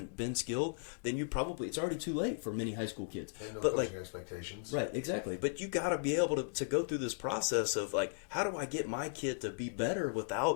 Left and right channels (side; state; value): right; silent; digital silence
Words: been skilled, then it's already too late for many high school kids. And no coaching expectations. Right, exactly. But you got to be able to go through this process of, like, how do I get my kid to be better